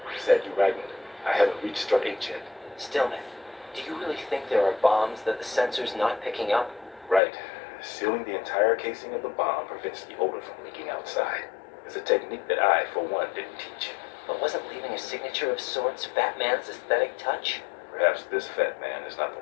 Is that you writing? I haven't reached strut 8 yet. Stillman, do you really think there are bombs that the sensor's not picking up? Right. Sealing the entire casing of the bomb prevents the odor from leaking outside. It's a technique that I, for one, didn't teach. But wasn't leaving a signature of sorts Fat Man's aesthetic touch? Perhaps this fat man is not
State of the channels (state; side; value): drops out; right; at 7.2 s